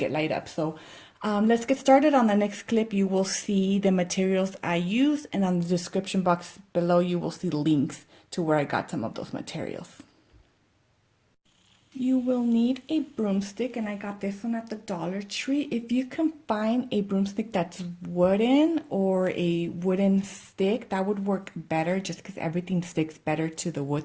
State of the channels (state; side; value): identical; both; correlation 1.00